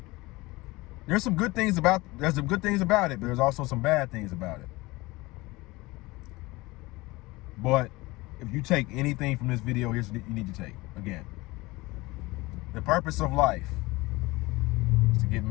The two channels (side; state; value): right; quieter; 21.6 dB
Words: There's some good things about it, but there's also some bad things about it. But if you take anything from this video, here's what you need to take. Again, the purpose of life is to get